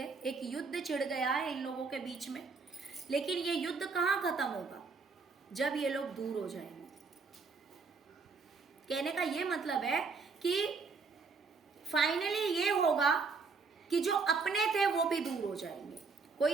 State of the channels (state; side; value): quieter; left; 4.6 dB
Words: एक युद्ध छिड़ गया है इन लोगों के बीच में। लेकिन ये युद्ध कहाँ खत्म होगा? जब ये लोग दूर हो जाएंगे। कहने का ये मतलब है कि फाइनली ये होगा कि जो अपने थे वो भी दूर हो जाएंगे।